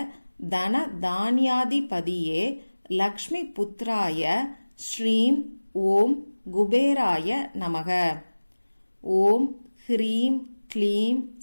தன தான்யாதிபதியே லக்ஷ்மி புத்ராய ஸ்ரீம் ஓம் குபேராய நமக. ஓம் ஹ்ரீம் க்ளீம்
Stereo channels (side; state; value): both; inverted; correlation -1.00